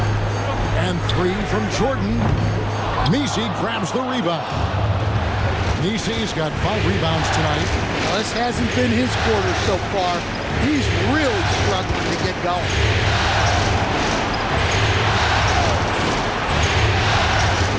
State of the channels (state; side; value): identical; both; correlation 1.00